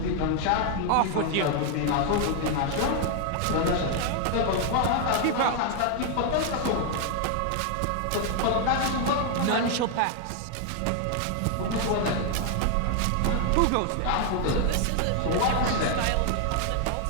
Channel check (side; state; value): both; different; correlation 0.00